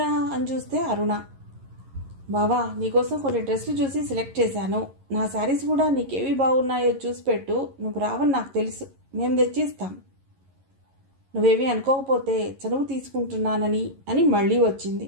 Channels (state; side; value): late; left; 11 ms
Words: అని చూస్తే అరుణ. బావా, నీకోసం కొన్ని డ్రెస్సులు చూసి సెలెక్ట్ చేశాను. నా శారీస్ కూడా నీకేవి బాగున్నాయో చూసి పెట్టు. నువ్వు రావని నాకు తెలుసు, మేము తెచ్చిస్తాం. నువ్వేమీ అనుకోకపోతే చనువు తీసుకుంటున్నానని అని మళ్ళీ వచ్చింది.